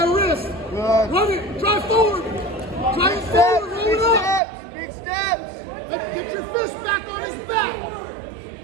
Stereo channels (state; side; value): drops out; left; at 4.4 s